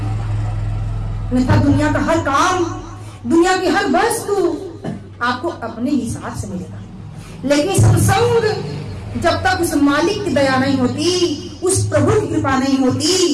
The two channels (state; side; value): identical; both; correlation 1.00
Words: अन्यथा दुनिया का हर काम, दुनिया की हर वस्तु आपको अपने हिसाब से मिलेगा, लेकिन सत्संग जब तक उस मालिक की दया नहीं होती, उस प्रभु की कृपा नहीं होती,